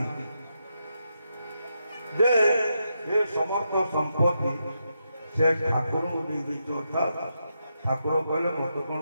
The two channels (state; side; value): inverted; both; correlation -0.84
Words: जे ये समस्त संपत्ति से ठाकुर अर्थात ठाकुर कहले मत